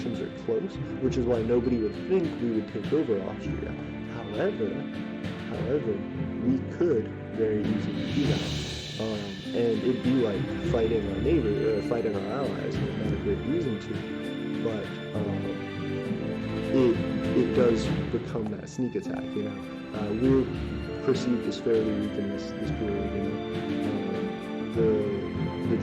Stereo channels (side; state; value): both; identical; correlation 1.00